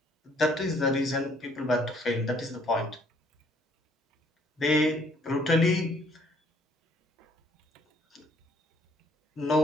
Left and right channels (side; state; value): both; normal; correlation 0.63